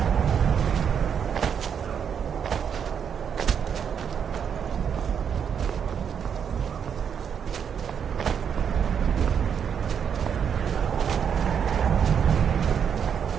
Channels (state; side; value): quieter; left; 7.6 dB